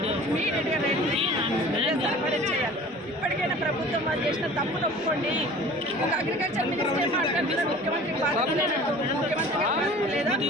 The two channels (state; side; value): noise; right; rumble, 28 dB below the sound